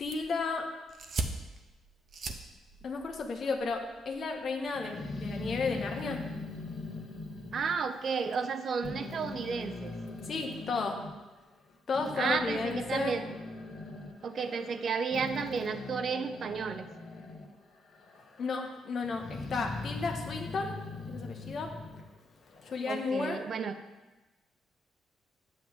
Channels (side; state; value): both; normal; correlation 0.76